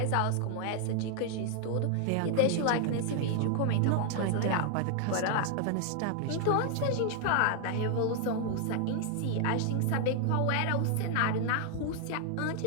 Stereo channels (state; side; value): different; both; correlation 0.00